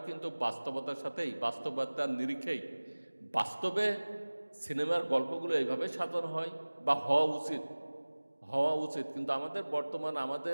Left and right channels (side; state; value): both; inverted; correlation -1.00